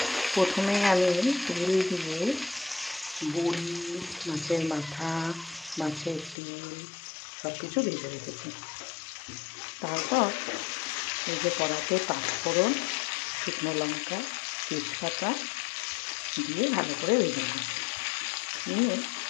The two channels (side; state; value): right; drops out; at 6.4 s